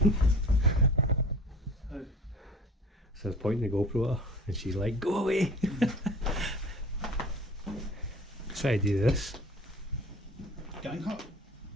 So I was pointing the GoPro at her and she's like, go away! Try to do this. Gang hut.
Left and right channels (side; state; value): both; normal; correlation 0.42